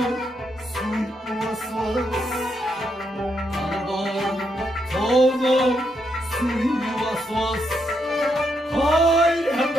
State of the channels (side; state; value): both; normal; correlation 0.79